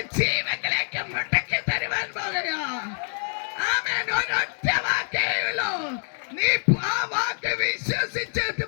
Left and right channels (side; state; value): right; silent; 61 dB below the other